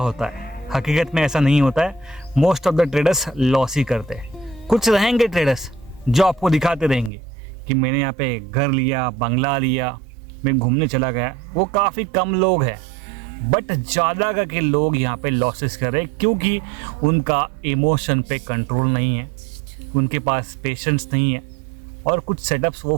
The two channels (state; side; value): drops out; left; at 7.1 s